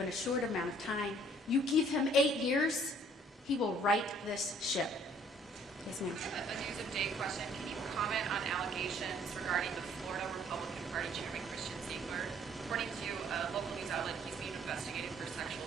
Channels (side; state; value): both; normal; correlation 0.59